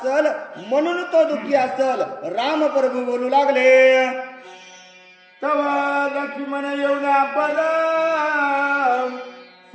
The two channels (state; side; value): identical; both; correlation 1.00